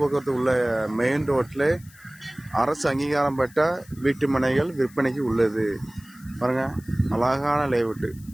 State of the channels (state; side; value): noise; left; hiss, 25 dB below the sound